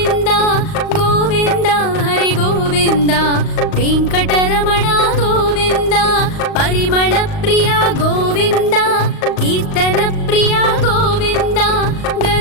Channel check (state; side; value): late; right; 38 ms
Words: गोविन्द हरि गोविन्द वेङ्कटरमण गोविन्द। परिमल प्रिय गोविन्द कीर्तन प्रिय गोविन्द